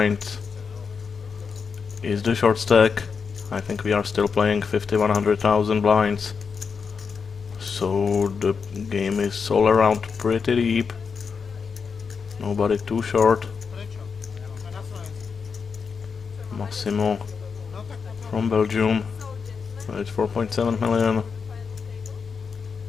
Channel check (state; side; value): quieter; right; 5.7 dB